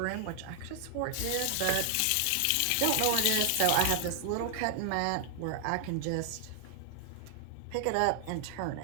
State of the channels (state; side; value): different; both; correlation 0.00